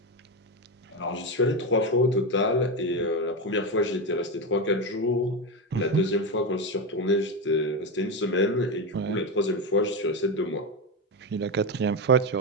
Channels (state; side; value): normal; both; correlation 0.14